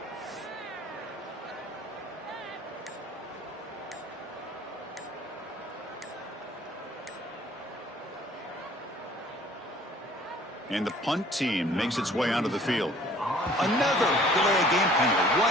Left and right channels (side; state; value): both; normal; correlation 0.54